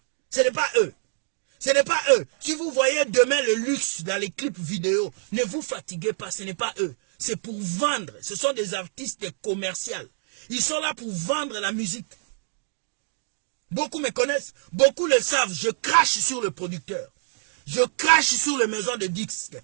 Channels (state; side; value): silent; left; digital silence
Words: Ce n'est pas eux. Ce n'est pas eux. Si vous voyez demain le luxe dans les clips vidéo, ne vous fatiguez pas, ce n'est pas eux. C'est pour vendre. Ce sont des artistes commerciaux. Ils sont là pour vendre la musique. Beaucoup me connaissent, beaucoup le savent. Je crache sur le producteur. Je crache sur les maisons de disques.